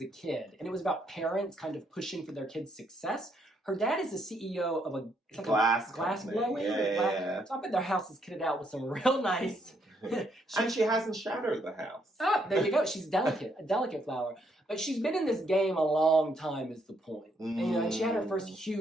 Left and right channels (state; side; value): normal; both; correlation 0.73